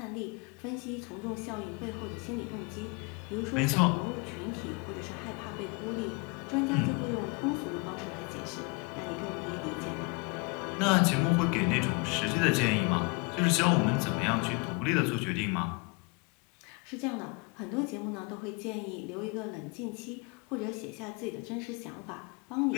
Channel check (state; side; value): quieter; right; 29.7 dB